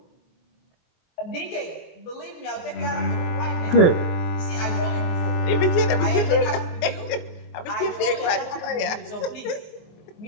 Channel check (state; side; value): late; right; 24 ms